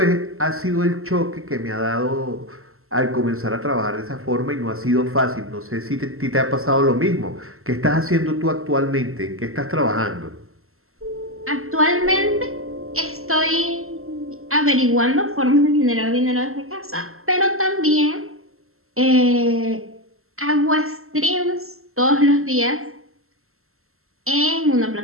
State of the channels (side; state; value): left; late; 0.62 ms